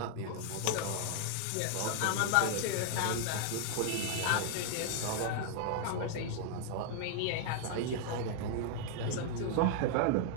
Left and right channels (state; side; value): different; both; correlation 0.00